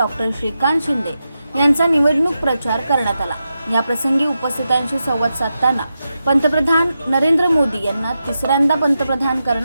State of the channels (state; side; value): inverted; both; correlation -0.88